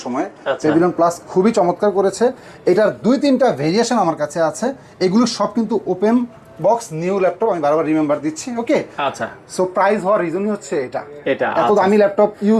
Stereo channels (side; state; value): both; identical; correlation 1.00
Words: সময়ে। আচ্ছা। প্যাভিলিয়ন প্লাস খুবই চমৎকার করেছে। এটার 2-3টা ভেরিয়েশন আমার কাছে আছে, এগুলো সব কিন্তু ওপেন বক্স নিউ ল্যাপটপ, আমি বারবার রিমেম্বার দিচ্ছি। ওকে আচ্ছা, সো প্রাইস হওয়ার রিজনই হচ্ছে এটা এত আচ্ছা। দামি ল্যাপটপ